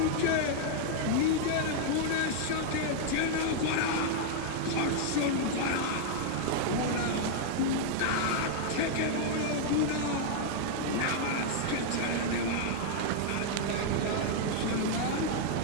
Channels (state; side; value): different; both; correlation -0.01